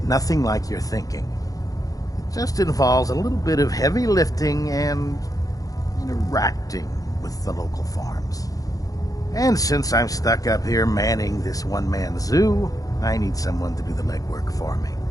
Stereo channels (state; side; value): late; right; 0.17 ms